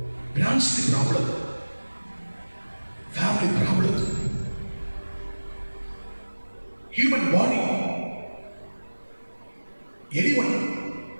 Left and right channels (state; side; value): inverted; both; correlation -1.00